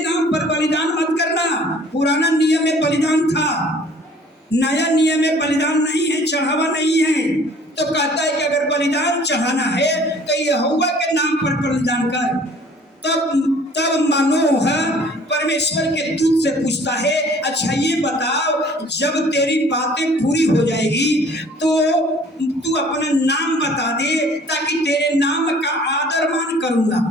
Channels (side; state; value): both; normal; correlation 0.53